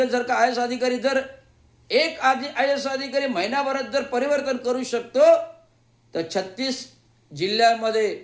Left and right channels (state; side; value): identical; both; correlation 1.00